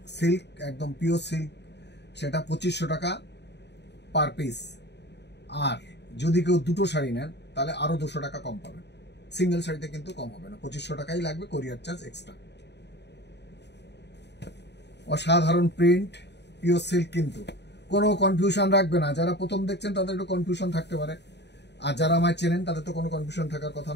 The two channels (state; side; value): late; right; 0.50 ms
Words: সিল্ক, একদম পিওর সিল্ক, সেটা 2500 টাকা পার পিস। আর যদি কেউ দুটো শাড়ি নেন তাহলে আরও 200 টাকা কম পাবেন। সিঙ্গেল শাড়িতে কিন্তু কম হবে না, 2500 টাকাই লাগবে, কোরিয়ার চার্জ এক্সট্রা। অসাধারণ প্রিন্ট, পিওর সিল্ক, কিন্তু কোনো কনফিউশন রাখবে না। যারা প্রথম দেখছেন তাদের একটু কনফিউশন থাকতে পারে, আর যারা আমায় চেনেন তাদের তো কোনো কনফিউশন থাকার কথা